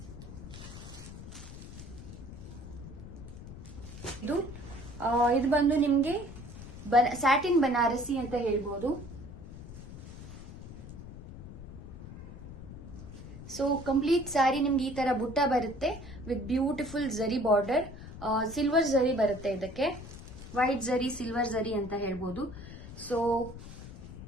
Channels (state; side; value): noise; left; rumble, 13 dB below the sound